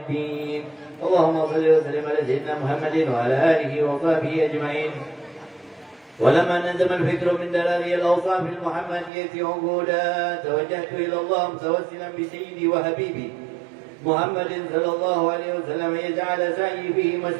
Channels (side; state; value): left; drops out; at 9.1 s